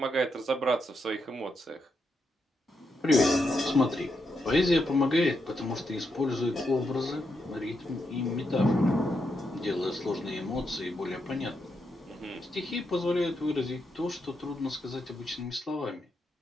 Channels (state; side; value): normal; both; correlation 0.82